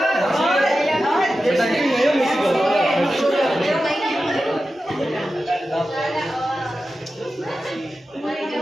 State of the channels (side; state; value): both; normal; correlation 0.92